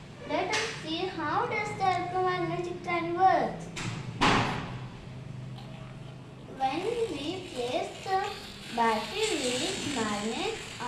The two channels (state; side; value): identical; both; correlation 1.00